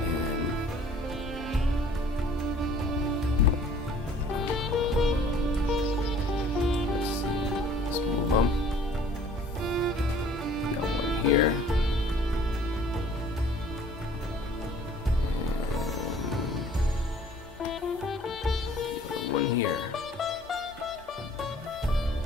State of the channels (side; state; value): both; normal; correlation 0.53